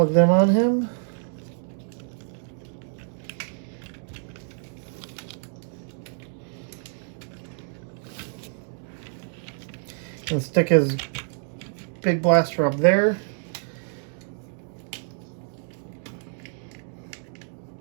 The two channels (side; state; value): left; silent; 60 dB below the other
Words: them on him. And stick his big blaster up there.